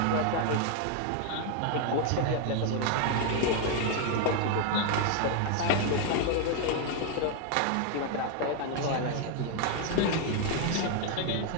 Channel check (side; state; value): both; different; correlation 0.01